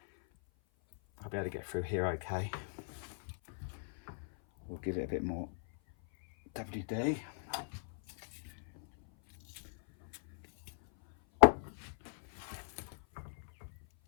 I'll be able to get through here okay. We'll give it a bit more WD.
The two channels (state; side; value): silent; right; 52 dB below the other